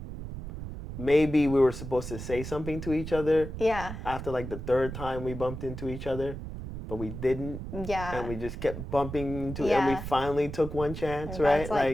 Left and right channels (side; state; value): right; noise; rumble, 8 dB below the sound